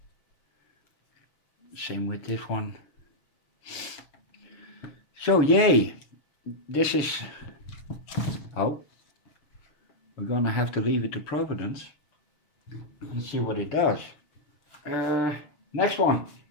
Same with this one. So yay, this is, oh, we're gonna have to leave it to Providence. Let's see what it does. Next one.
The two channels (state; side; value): late; right; 6.9 ms